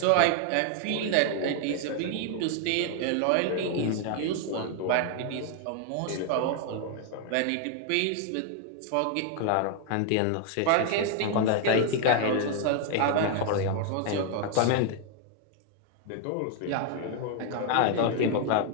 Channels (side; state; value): both; different; correlation 0.00